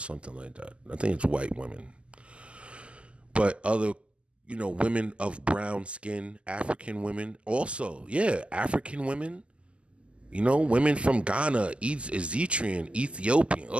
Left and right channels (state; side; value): late; left; 0.054 ms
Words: like that. I think it's white women. But other, you know, women of brown skin, African women also, yeah, African women, you know, women from Ghana, Eritrean, Ethiopian,